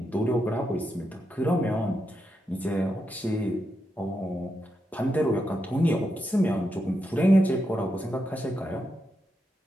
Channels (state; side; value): normal; both; correlation 0.84